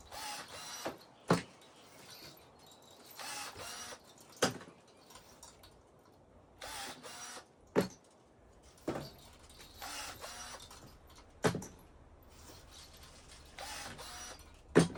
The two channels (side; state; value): both; identical; correlation 1.00